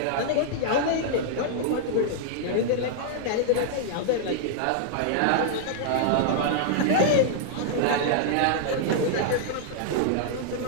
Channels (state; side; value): different; both; correlation -0.01